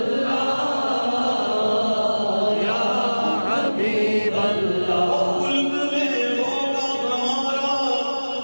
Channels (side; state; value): both; inverted; correlation -1.00